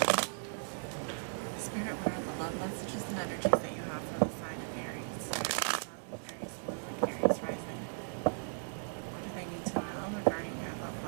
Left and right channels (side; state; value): left; silent; 53 dB below the other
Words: Spirit, what are the love messages and energies that you have for the sign of Aries? Aries Moon, Aries Rising. What do they need to know regarding their love